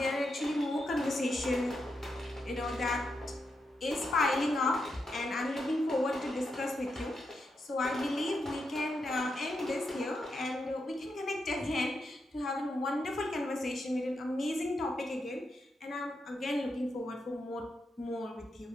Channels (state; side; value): normal; both; correlation 0.84